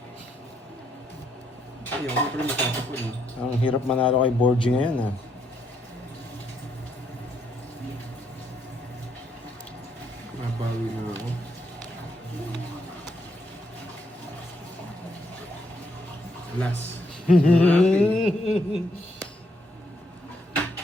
Ay, ako pala matatapon. Ang hirap manalo kay Borgie ngayon, ha. Nabawi na ako. Last.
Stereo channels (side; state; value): both; normal; correlation 0.75